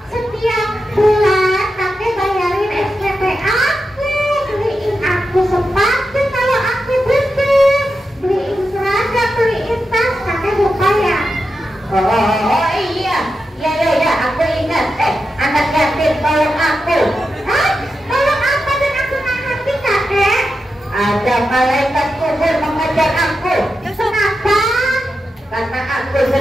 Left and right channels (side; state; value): both; normal; correlation 0.89